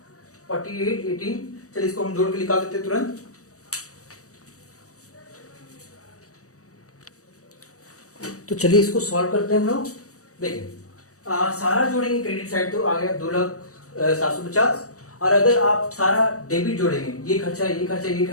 4818। चलिए इसको हम जोड़ के निकाल देते हैं तुरंत। तो चलिए इसको सॉल्व करते हैं हम लोग। देखिए सारा जोड़ेंगे क्रेडिट साइड तो आ गया 2,750, और अगर आप सारा डेबिट जोड़ेंगे, ये खर्चा ये खर्चा ये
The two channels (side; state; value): right; late; 0.65 ms